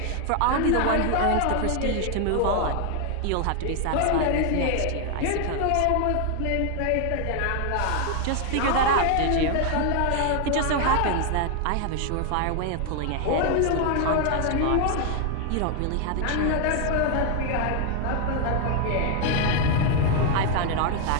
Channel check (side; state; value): both; different; correlation 0.00